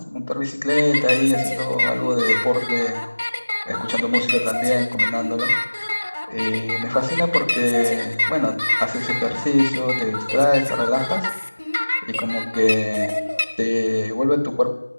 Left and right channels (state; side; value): inverted; both; correlation -1.00